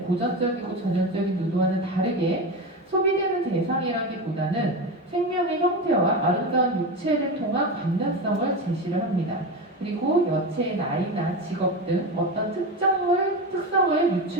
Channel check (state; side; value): normal; both; correlation 0.21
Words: 고전적이고 전형적인 누드와는 다르게 소비되는 대상이라기보다는 생명의 형태와 아름다운 육체를 통한 관련성을 제시를 합니다. 그리고 여체의 나이나 직업 등 어떤 특성을